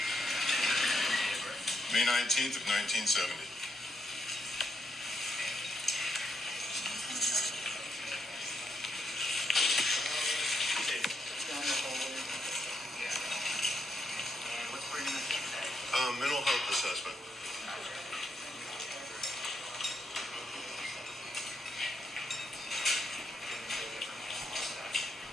May 19th of 1970. What's for your name? Mental health assessment.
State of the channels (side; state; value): both; normal; correlation 0.80